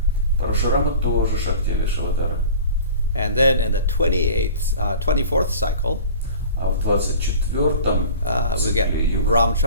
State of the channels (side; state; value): both; inverted; correlation -0.41